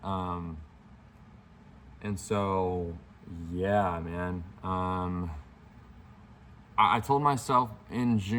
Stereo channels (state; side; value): identical; both; correlation 1.00